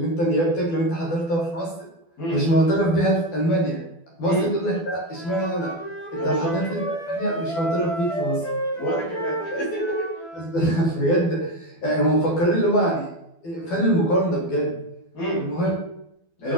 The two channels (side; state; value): right; late; 12 ms